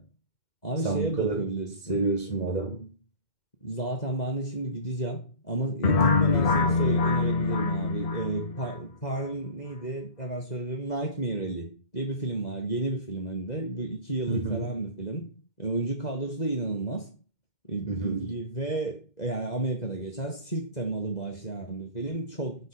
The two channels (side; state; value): right; late; 2.1 ms